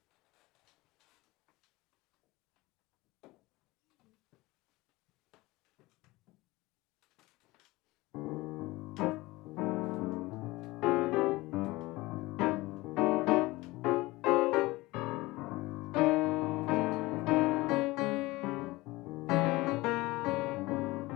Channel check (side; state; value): right; quieter; 20.8 dB